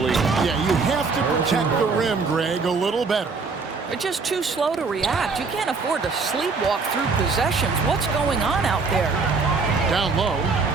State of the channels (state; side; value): quieter; left; 4.5 dB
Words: Yeah, you have to protect the rim, Greg, a little better. They're just too slow to react. You can't afford to sleepwalk through possessions. What's going on out there? Down low.